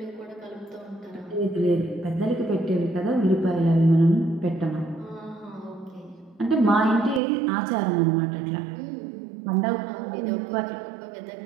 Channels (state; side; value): drops out; left; at 7.2 s